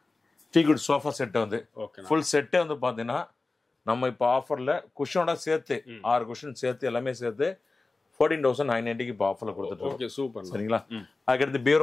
டீ குட் சோஃபா செட் வந்து ஃபுல் செட்டே வந்து பாத்தீங்கன்னா நம்ம இப்போ ஆஃபர்ல குஷனோட சேர்த்து 6 குஷன் சேர்த்து எல்லாமே சேர்த்து 14,990 இப்போ ஆஃபர்ல கொடுத்துட்டு. Okay, super. சரிங்களா? அதுக்கடுத்து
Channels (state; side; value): quieter; right; 3.5 dB